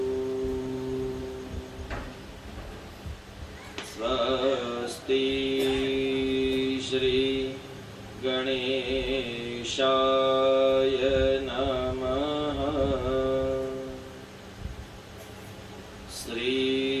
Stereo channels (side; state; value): both; identical; correlation 1.00